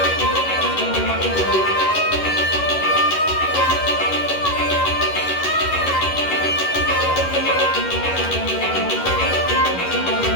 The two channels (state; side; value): late; right; 11 ms